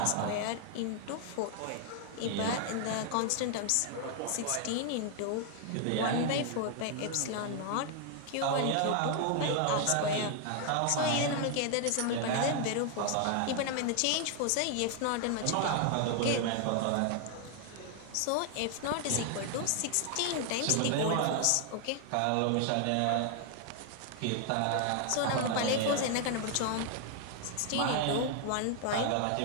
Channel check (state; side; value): different; both; correlation 0.00